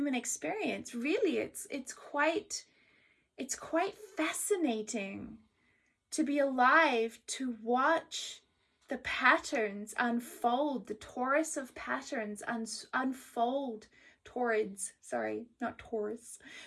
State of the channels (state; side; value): identical; both; correlation 1.00